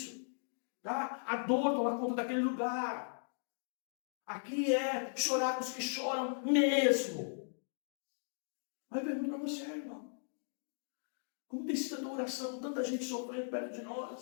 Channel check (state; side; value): silent; right; digital silence